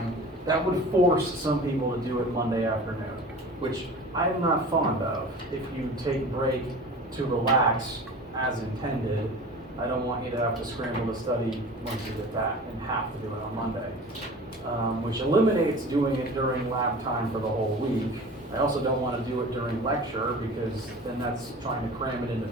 that would force some people to do it Monday afternoon, which I'm not fond of. If you take break to relax as intended, I don't want you to have to scramble to study once you get back and have to do it on Monday, which eliminates doing it during lab time for the whole week. I also don't want to do it during lecture because then that's trying to cram it into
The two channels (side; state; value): both; normal; correlation 0.38